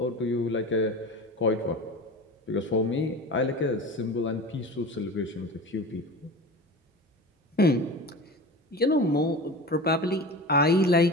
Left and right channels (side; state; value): both; normal; correlation 0.32